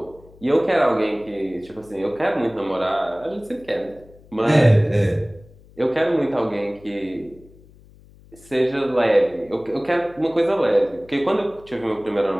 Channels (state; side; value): noise; left; hum, 25 dB below the sound